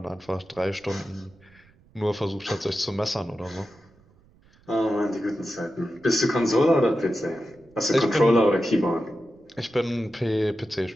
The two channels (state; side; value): noise; right; rumble, 30 dB below the sound